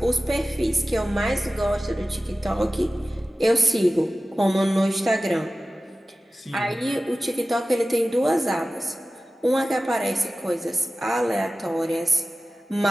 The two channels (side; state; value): both; normal; correlation 0.95